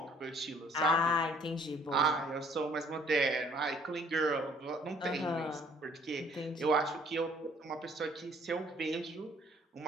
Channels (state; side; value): normal; both; correlation 0.60